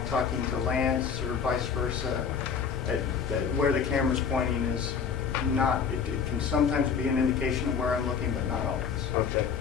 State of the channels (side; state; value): right; quieter; 6.6 dB